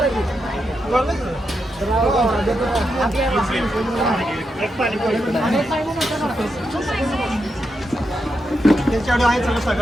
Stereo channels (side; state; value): both; normal; correlation 0.85